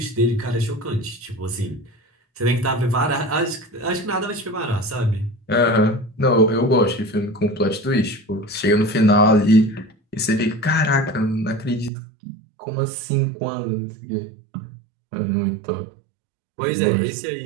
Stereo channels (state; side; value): drops out; left; at 11.9 s